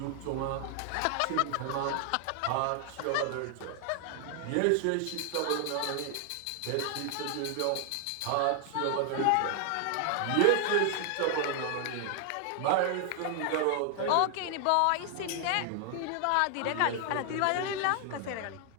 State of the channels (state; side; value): different; both; correlation 0.00